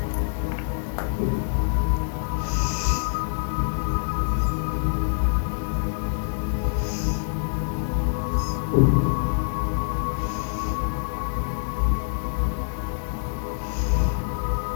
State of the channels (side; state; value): right; silent; digital silence